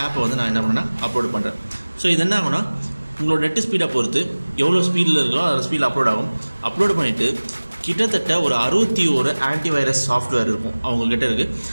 ஆப்பை நான் என்ன பண்ணேன்னா அப்லோட் பண்ணுறேன். ஸோ இது என்ன ஆகும்னா, உங்களோட நெட்டு ஸ்பீடை பொறுத்து எவ்வளோ ஸ்பீடில் இருக்கோ அதோட ஸ்பீடில் அப்லோட் ஆகும். அப்லோட் பண்ணிவிட்டு கிட்டத்தட்ட ஒரு 61 ஆன்டிவைரஸ் சாஃப்ட்வேர் இருக்கும் அவங்கக்கிட்ட இருக்குது.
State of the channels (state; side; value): inverted; both; correlation -1.00